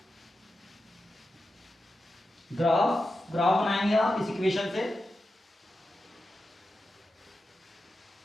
ग्राफ बनाएंगे आप इस इक्वेशन से,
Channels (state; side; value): normal; both; correlation 0.90